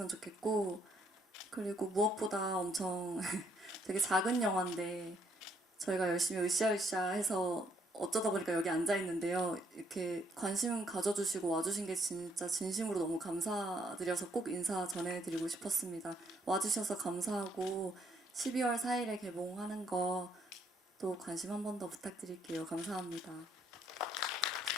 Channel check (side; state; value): both; normal; correlation 0.70